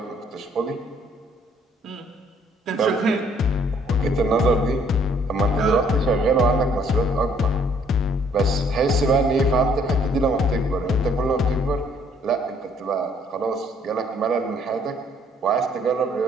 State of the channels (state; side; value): normal; both; correlation 0.63